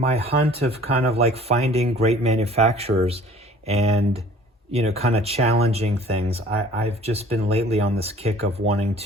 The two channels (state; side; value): normal; both; correlation 0.51